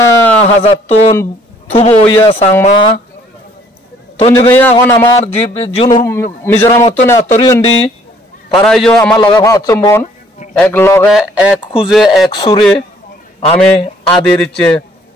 হাজার টন থুবো ইয়া সাংমা তন জগইয়া এখন আমার জুন মিজোরামত না তরিয়ন্দি তারাইও আমার লগে ভাবছমন এক লগে এক খুঁজে এক সুরে আমি আদির ইচ্ছে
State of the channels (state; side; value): normal; both; correlation 0.60